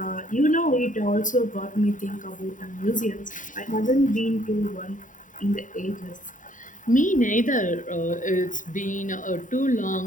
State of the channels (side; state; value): right; late; 0.38 ms